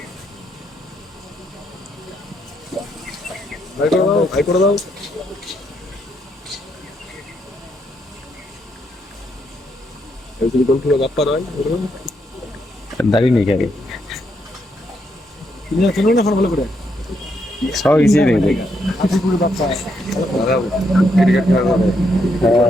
দাঁড়িয়ে নেই খেলে সব ইজি নেই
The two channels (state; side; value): normal; both; correlation 0.77